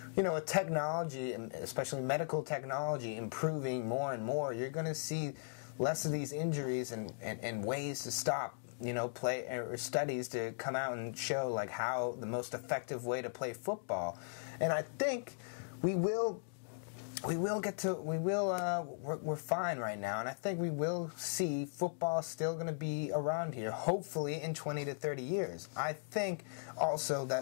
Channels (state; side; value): silent; right; digital silence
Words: with technology, especially medical technology, improving more and more, you're going to see less of these injuries and ways to stop, play or studies to come out and show like how the most effective way to play football. And I think we're fine right now, and I think we will see football still going to be around here, hopefully in 20 to 30 years. I think also